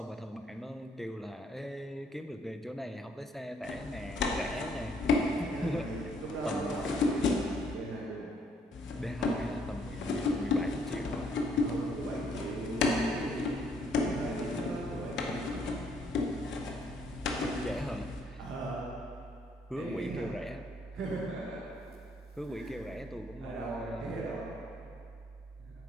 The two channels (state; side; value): normal; both; correlation 0.67